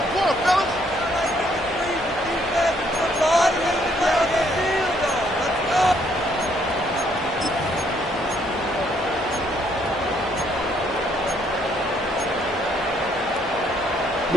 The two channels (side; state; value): both; normal; correlation 0.68